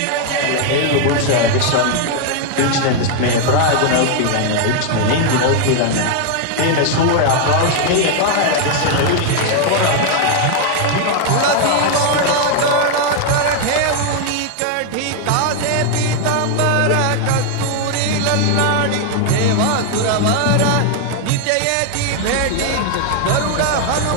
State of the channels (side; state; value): both; different; correlation 0.00